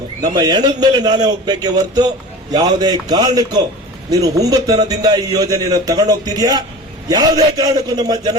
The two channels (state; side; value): normal; both; correlation 0.36